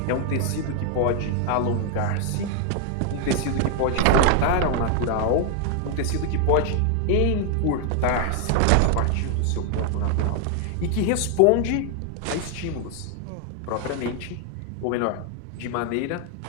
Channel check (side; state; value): both; different; correlation 0.00